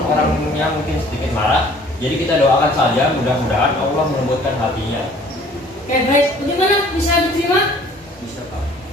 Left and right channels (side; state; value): both; normal; correlation 0.53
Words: orangnya mungkin sedikit marah. Jadi kita doakan saja, mudah-mudahan Allah melembutkan hatinya. Oke, baik. Bagaimana? Bisa diterima? Bisa Pak.